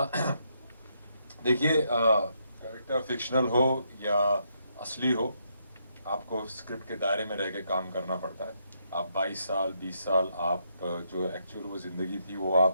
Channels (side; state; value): both; inverted; correlation -0.77